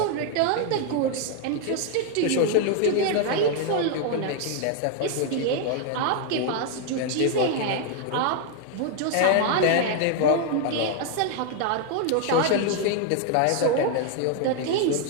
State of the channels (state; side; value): different; both; correlation 0.00